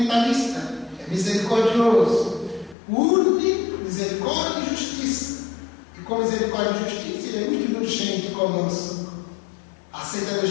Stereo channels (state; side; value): drops out; right; at 2.8 s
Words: é misericordioso. Une misericórdia e justiça. E com misericórdia e justiça, Ele é muito indulgente conosco. Aceita do